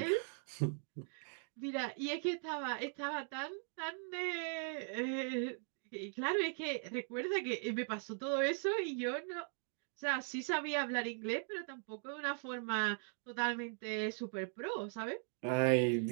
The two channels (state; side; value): silent; left; 51 dB below the other